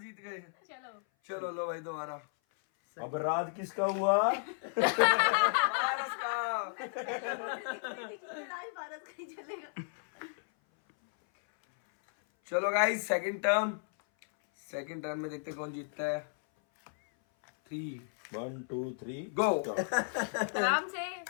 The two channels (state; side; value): silent; right; 55 dB below the other